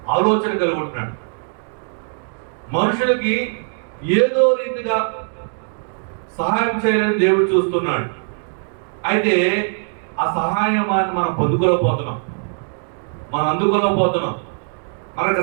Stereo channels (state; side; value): silent; left; 65 dB below the other